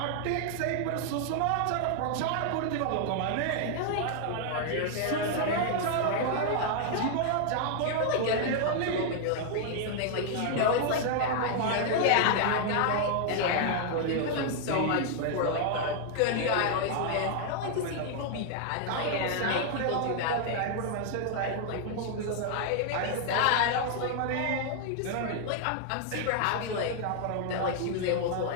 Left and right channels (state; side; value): different; both; correlation 0.00